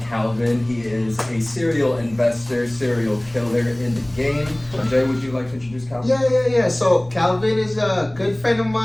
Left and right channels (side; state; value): left; noise; rumble, 23 dB below the sound